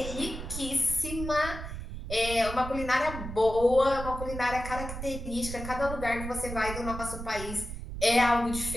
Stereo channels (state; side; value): noise; right; rumble, 8 dB below the sound